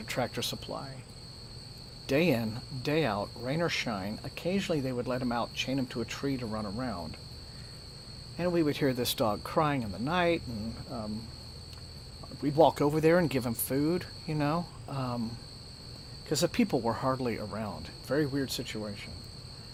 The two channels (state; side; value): identical; both; correlation 1.00